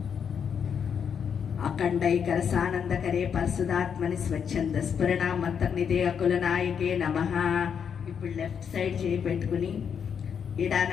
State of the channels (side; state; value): right; quieter; 7.3 dB